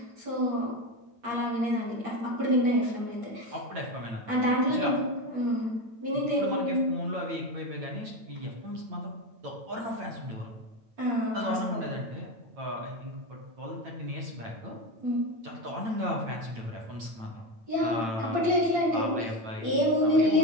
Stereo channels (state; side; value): late; left; 8.9 ms